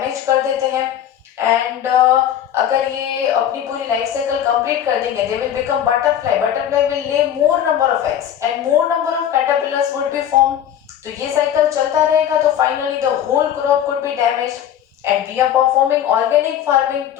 कर देते हैं, एंड अगर ये अपनी पूरी लाइफ साइकिल कंप्लीट कर देंगे they will become butterfly, butterfly will lay more number of eggs and more number of caterpillars would be form. तो ये साइकिल चलता रहेगा, तो finally the whole crop could be damaged and we are performing organic farming,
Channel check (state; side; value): quieter; right; 10.2 dB